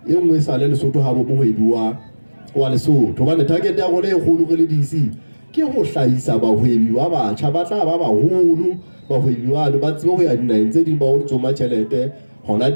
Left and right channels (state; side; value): inverted; both; correlation -1.00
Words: e nngwe sa le Lesotho ha bo mohebi wa Lesotho ba ne target ya rona e kgolo re le DC ke ho hlahisa bahwebi ba batjha ba tla ba baholo bahwebi ba tsebe ho ya dinaheng tse ding ba ho tsoma tjhelete hona